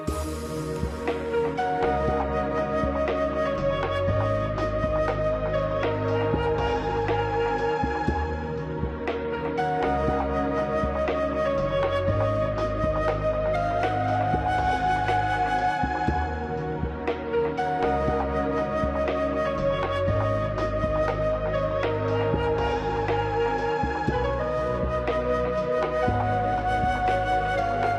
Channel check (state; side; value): identical; both; correlation 1.00